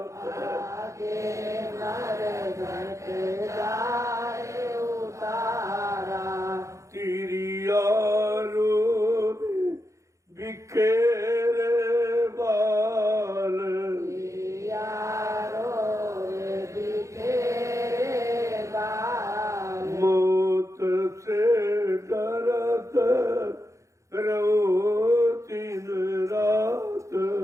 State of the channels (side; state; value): left; late; 0.15 ms